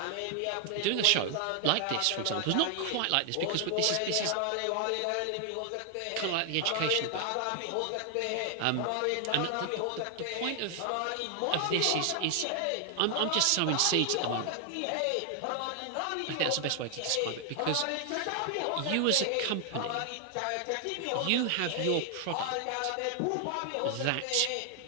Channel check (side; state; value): both; different; correlation 0.00